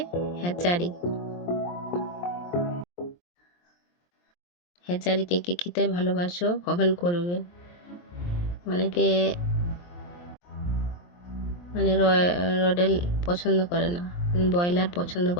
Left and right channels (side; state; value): right; late; 23 ms